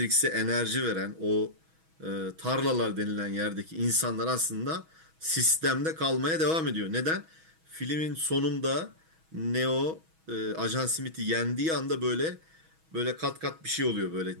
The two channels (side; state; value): left; late; 6.2 ms